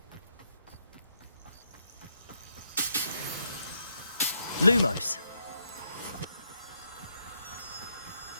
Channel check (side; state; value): both; inverted; correlation -0.77